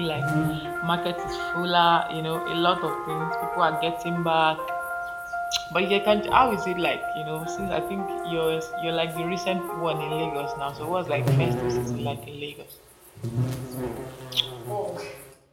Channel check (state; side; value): identical; both; correlation 1.00